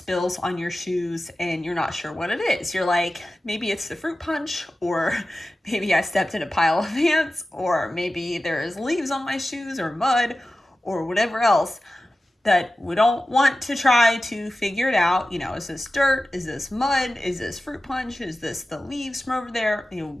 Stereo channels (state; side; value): normal; both; correlation 0.94